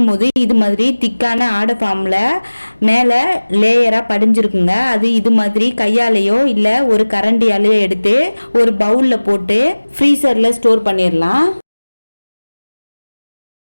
இது மாதிரி திக்கான ஆடை ஃபார்மில் மேலே லேயராக படிஞ்சிருக்குங்க. அது இது மாதிரி கையாலேயோ இல்லை ஒரு கரண்டியாலேயோ எடுத்து ஒரு பவுலில் போட்டு ஃப்ரீசரில் ஸ்டோர் பண்ணிடலாம்.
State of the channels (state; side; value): inverted; both; correlation -1.00